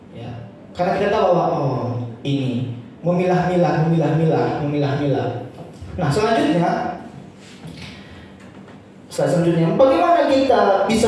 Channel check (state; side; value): identical; both; correlation 1.00